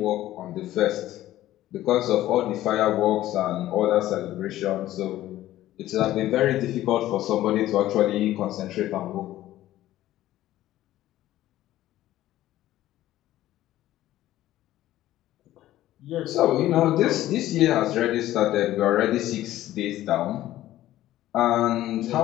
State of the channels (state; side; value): quieter; right; 14.4 dB